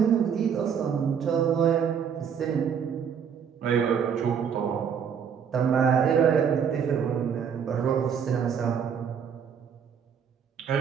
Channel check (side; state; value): left; quieter; 7.4 dB